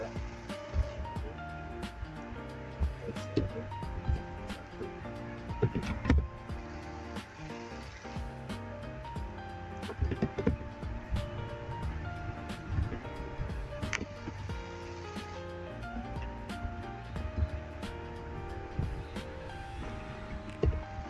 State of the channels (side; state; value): both; identical; correlation 1.00